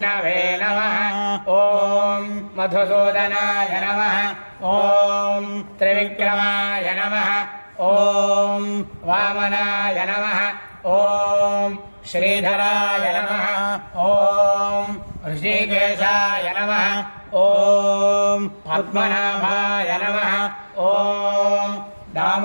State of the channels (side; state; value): both; inverted; correlation -1.00